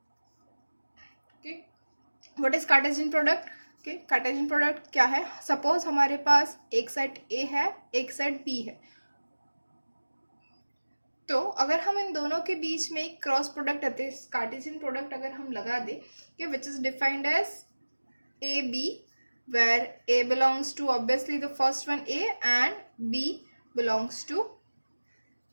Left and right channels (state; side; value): inverted; both; correlation -1.00